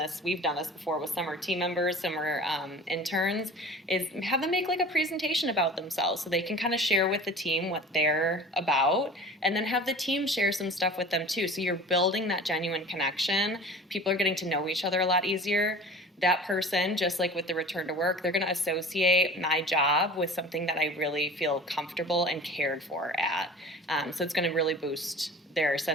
we've done this before with some are team members, some are interns, is have them make like a presentation about themselves so they can kind of share with the team what they're about, and then have the team share some stuff with them too. So you're building that genuine connection. People are getting to know each other a lot easier. That person, just like with the return to work, they're going to associate my job with something that I really feel comfortable and cared for at. So it's going to really boost their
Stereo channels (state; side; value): normal; both; correlation 0.40